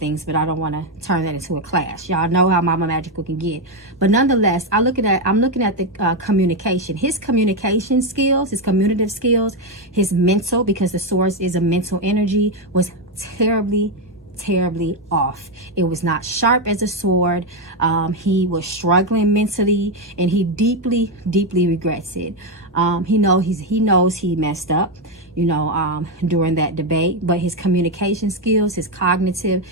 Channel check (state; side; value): normal; both; correlation 0.06